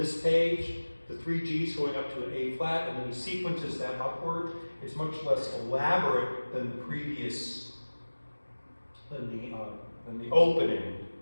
page, the 3 Gs going up to an A flat, and then he sequences that upward. It's much less elaborate than the previous, than the opening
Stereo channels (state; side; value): inverted; both; correlation -1.00